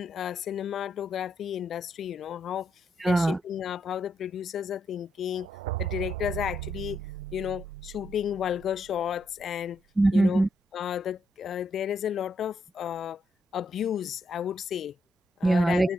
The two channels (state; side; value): normal; both; correlation 0.78